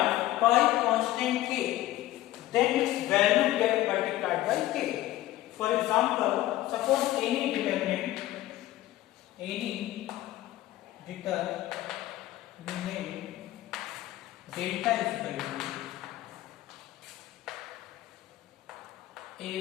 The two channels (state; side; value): quieter; right; 15.4 dB